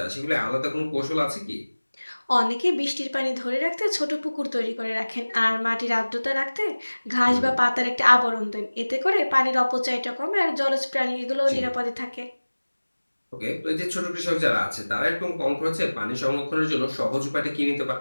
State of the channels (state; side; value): inverted; both; correlation -1.00